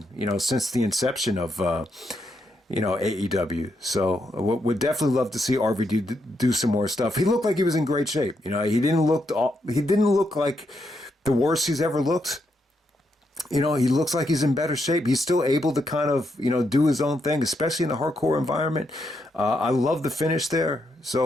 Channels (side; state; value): both; normal; correlation 0.80